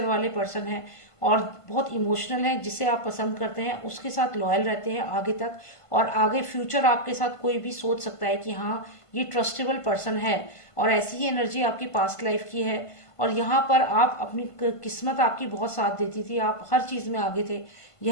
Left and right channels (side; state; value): right; late; 1.5 ms